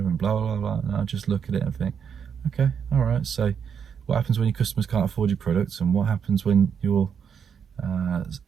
and blah blah blah. And I just look at it and think, okay, all right. So what happens when your customers can't afford your products, and what happens when your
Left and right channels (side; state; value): left; quieter; 7.3 dB